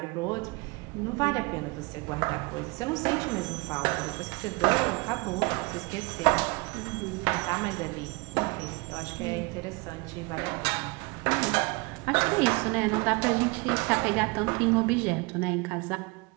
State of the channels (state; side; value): quieter; left; 26.9 dB